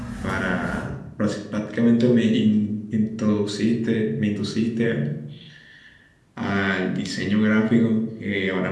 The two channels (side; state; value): both; identical; correlation 1.00